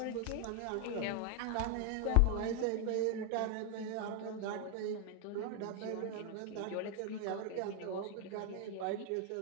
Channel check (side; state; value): both; different; correlation 0.00